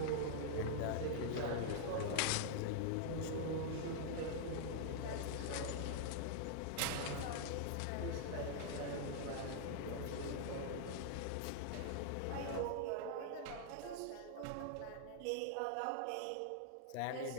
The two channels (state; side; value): different; both; correlation -0.01